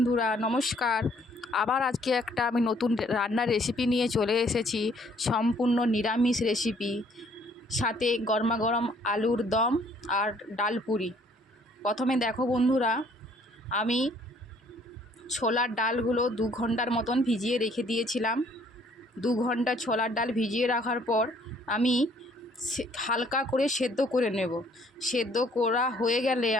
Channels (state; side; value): normal; both; correlation 0.62